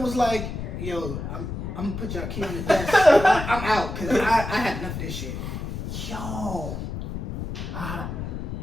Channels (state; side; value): noise; left; rumble, 6 dB below the sound